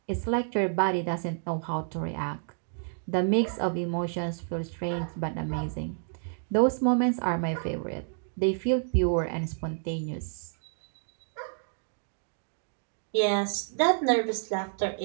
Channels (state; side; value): silent; left; digital silence